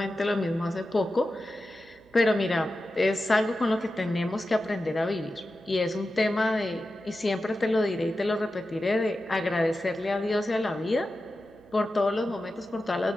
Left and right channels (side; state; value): right; noise; hum, 29 dB below the sound